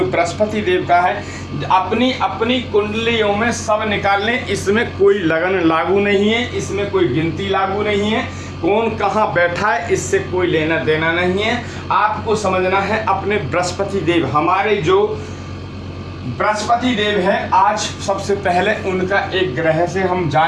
बृहस्पति देव का है। अपनी अपनी कुंडलियों में सब निकाल लें, इसमें कोई लगन लागू नहीं है, इसमें कोई गिनती लागू नहीं है, कौन कहाँ बैठा है इससे कोई लेना देना नहीं है। आपको समझना है अपने बृहस्पति देव, हमारे जो बृहस्पति देव है, आज सबसे पहले उनका एक ग्रह से हम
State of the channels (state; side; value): identical; both; correlation 1.00